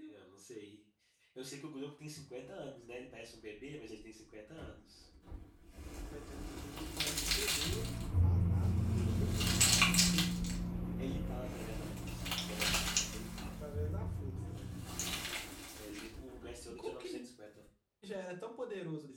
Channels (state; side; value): identical; both; correlation 1.00